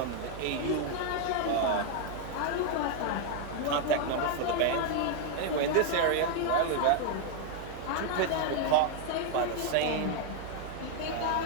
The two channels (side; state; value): both; different; correlation 0.00